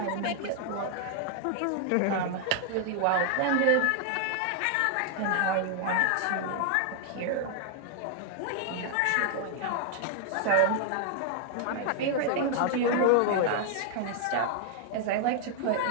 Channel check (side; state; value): both; different; correlation 0.00